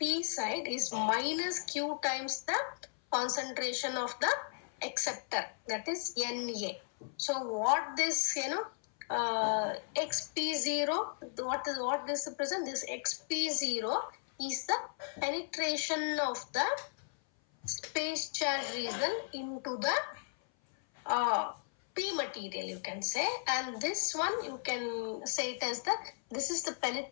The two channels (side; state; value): right; silent; 54 dB below the other